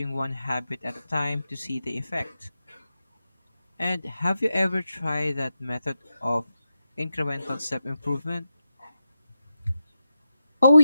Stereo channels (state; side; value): inverted; both; correlation -0.89